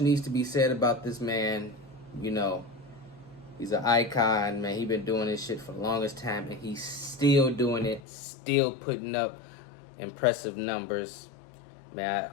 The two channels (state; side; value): drops out; right; at 8.0 s